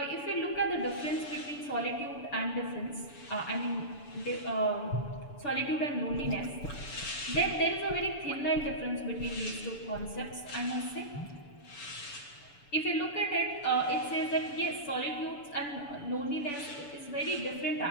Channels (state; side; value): late; right; 6.9 ms